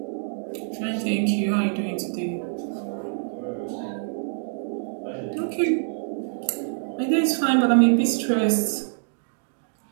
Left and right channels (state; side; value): silent; left; digital silence